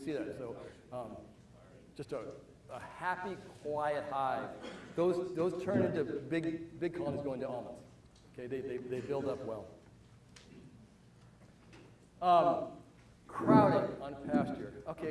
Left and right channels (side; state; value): both; identical; correlation 1.00